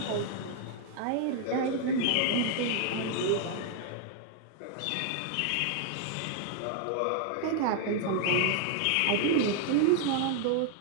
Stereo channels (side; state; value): both; different; correlation 0.00